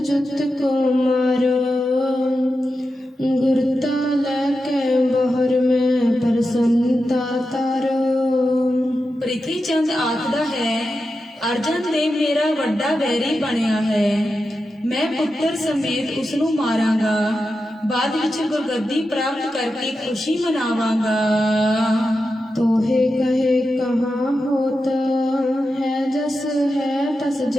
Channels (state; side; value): normal; both; correlation 0.90